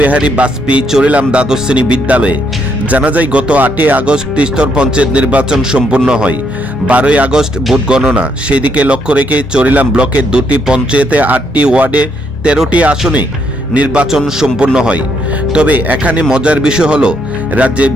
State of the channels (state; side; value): normal; both; correlation 0.74